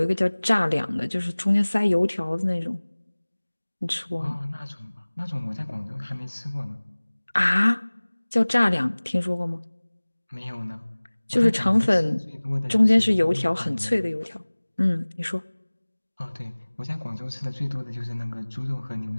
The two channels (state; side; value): inverted; both; correlation -1.00